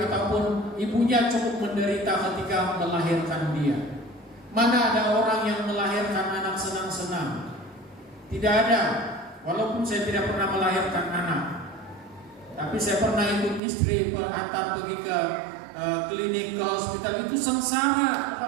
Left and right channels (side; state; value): left; drops out; at 13.6 s